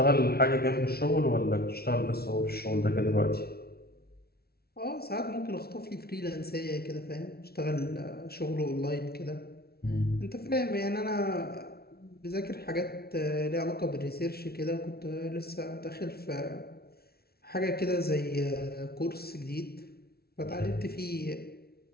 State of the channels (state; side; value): late; right; 0.45 ms